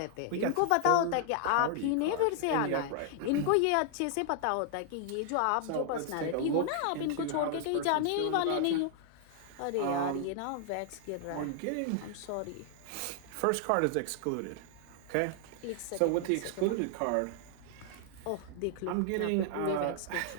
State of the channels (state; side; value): different; both; correlation 0.00